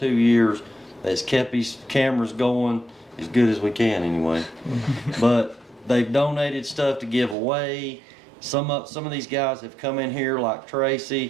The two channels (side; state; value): left; drops out; at 7.4 s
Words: years, that's kept these cameras going as good as we can anyway. But they've donated stuff to give away. Some of these guys have come in here like